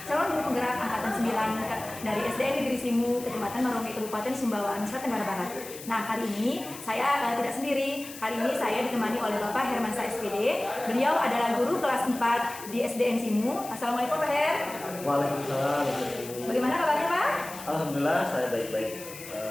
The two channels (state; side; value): noise; left; hiss, 14 dB below the sound